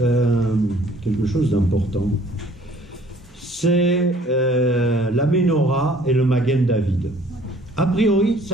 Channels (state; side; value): normal; both; correlation 0.56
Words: quelque chose d'important. C'est la Ménorah et le Magen David. A priori,